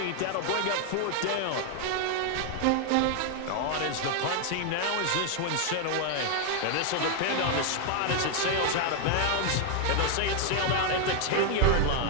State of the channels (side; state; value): both; different; correlation 0.00